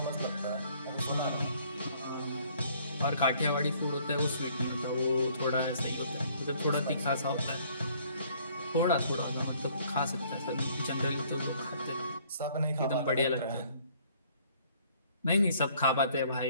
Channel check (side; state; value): both; inverted; correlation -0.60